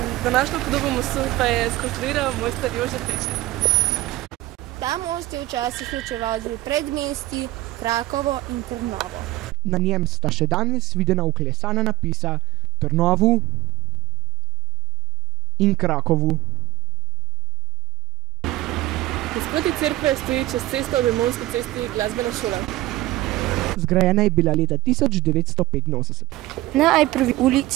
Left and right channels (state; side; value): quieter; left; 17.0 dB